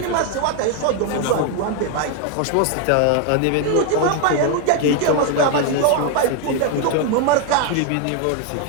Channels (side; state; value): both; different; correlation 0.01